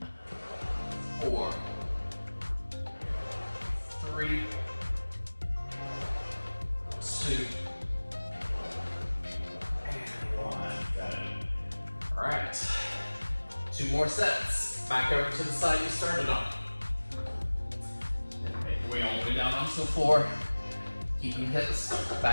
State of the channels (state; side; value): inverted; both; correlation -1.00